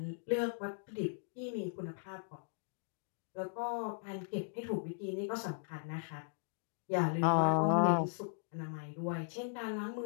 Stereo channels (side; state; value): right; silent; digital silence